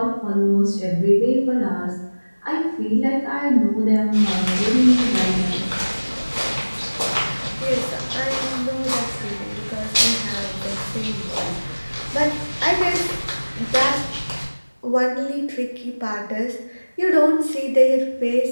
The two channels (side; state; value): both; inverted; correlation -1.00